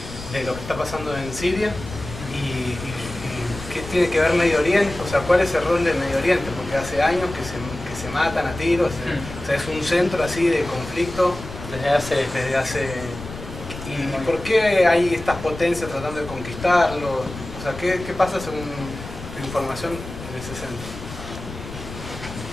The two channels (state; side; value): noise; left; rumble, 12 dB below the sound